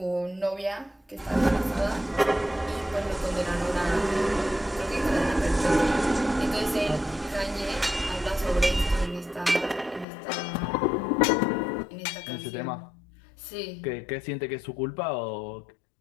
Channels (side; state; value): right; drops out; at 10.1 s